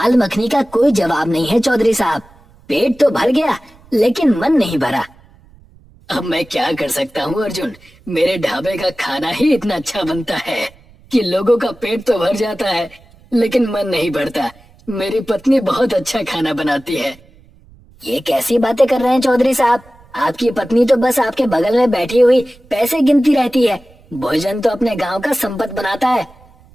मखनी का कोई जवाब नहीं है चौधरी साहब, पेट तो भर गया लेकिन मन नहीं भरा। अब मैं क्या कर सकता हूँ अर्जुन, मेरे ढाबे का खाना ही इतना अच्छा बनता है कि लोगों का पेट तो भर जाता है लेकिन मन नहीं भरता। मेरी पत्नी बहुत अच्छा खाना बनाती है। ये कैसी बातें कर रहे हैं चौधरी साहब, आपकी पत्नी तो बस आपके बगल में बैठी हुई पैसे गिनती रहती है, भोजन तो अपने गांव का संपत बनाता है।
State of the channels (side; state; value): right; noise; rumble, 27 dB below the sound